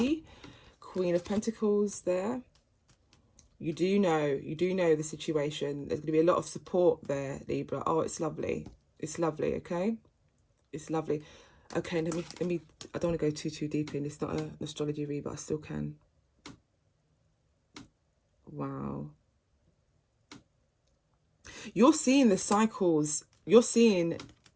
Queen of Pentacles there. You do know the situation. There's going to be a lot of support there, Libra. Oh, it's lovely. It's lovely, okay? It's lovely. Okay, let me I don't want to go too deep in. It's not an astrology read, but I still can. Wow. You're seeing the cycles. You're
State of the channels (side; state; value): both; identical; correlation 1.00